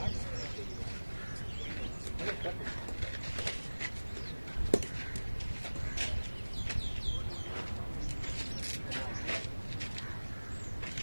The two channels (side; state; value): both; inverted; correlation -1.00